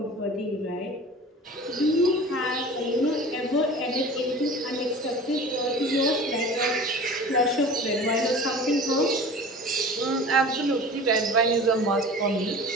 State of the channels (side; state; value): both; normal; correlation 0.39